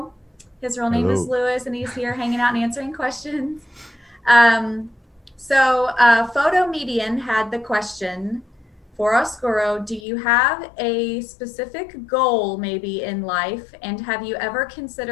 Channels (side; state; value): right; drops out; at 10.0 s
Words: His real name is Louis, and he's here hanging out and answering questions. Photo Median had the question for Oscuro: do you have a specific goal maybe in life, and have you ever